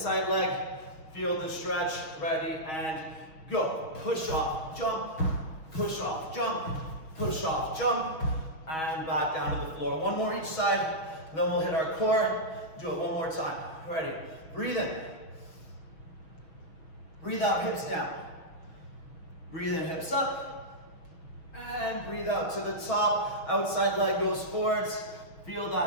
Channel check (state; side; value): late; right; 6.3 ms